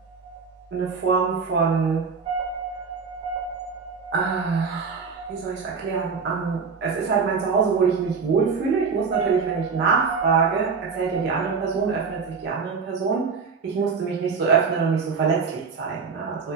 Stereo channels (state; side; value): quieter; left; 5.3 dB